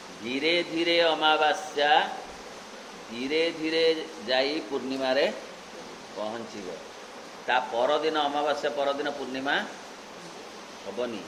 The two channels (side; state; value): both; identical; correlation 1.00